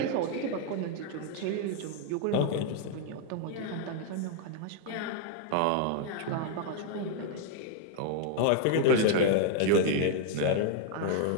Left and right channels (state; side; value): different; both; correlation 0.00